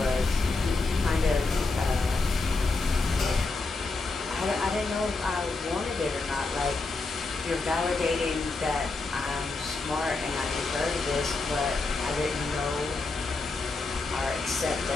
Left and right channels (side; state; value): right; quieter; 3.6 dB